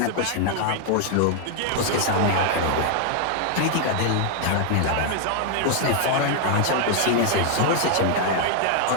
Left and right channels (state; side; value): different; both; correlation 0.00